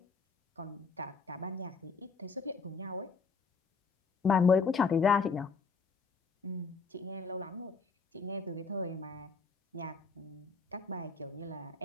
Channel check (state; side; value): quieter; right; 4.8 dB